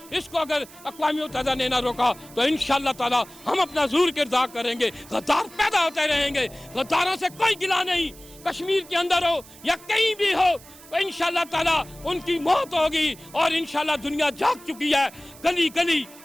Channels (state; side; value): noise; right; hiss, 21 dB below the sound